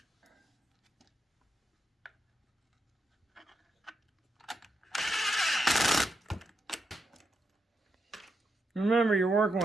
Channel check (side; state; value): both; normal; correlation 0.83